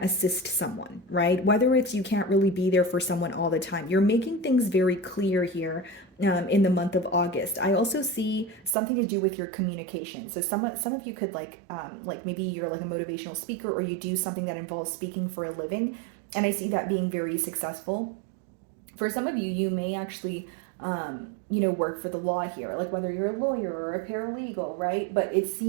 assist someone, right? Whether it's you can't really be there for someone all the time, you're making things very clear here in the month of August. I also see something to do with your communication. So some of you could like maybe you're like a motivational speaker, or you do something that involves speaking for a living, and I see that being very successful. For some of you, you may actually work for the law here, like whether you're a lawyer or a paralegal, right? But it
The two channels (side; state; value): left; drops out; at 8.8 s